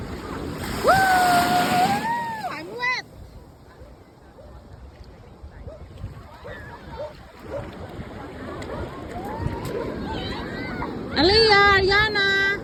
Woo! I'm wet. Aliyah, Ariana.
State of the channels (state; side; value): identical; both; correlation 1.00